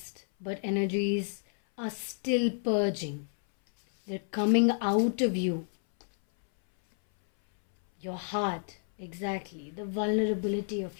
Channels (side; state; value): right; silent; 58 dB below the other